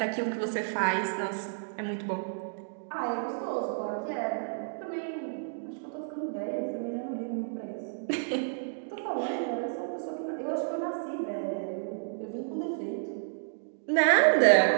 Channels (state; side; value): silent; left; digital silence